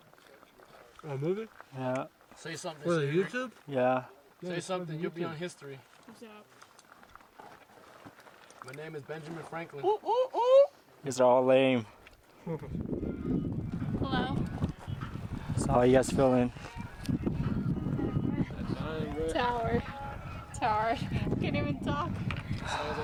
A movie? Yeah. Say something. For the Siri. YouTube? Yeah. Say something. You'll be on history. What's up? My name is Benjamin Franklin. These are all lame. Hello. So how you guys feeling? Tower. Tower. Can't even talk.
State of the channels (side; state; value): both; identical; correlation 1.00